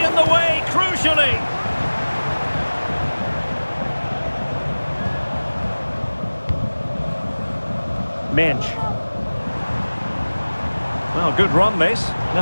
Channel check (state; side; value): inverted; both; correlation -1.00